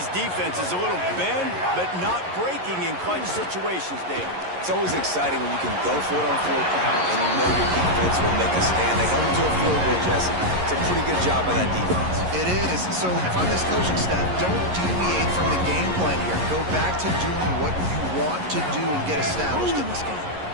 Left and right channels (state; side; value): late; left; 11 ms